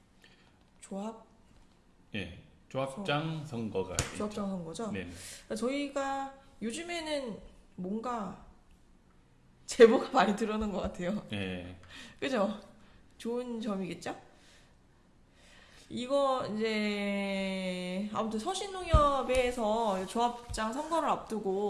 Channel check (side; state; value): both; identical; correlation 1.00